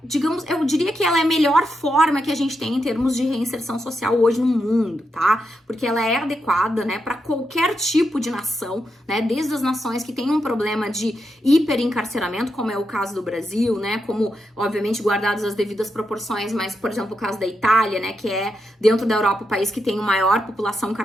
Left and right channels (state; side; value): normal; both; correlation 0.84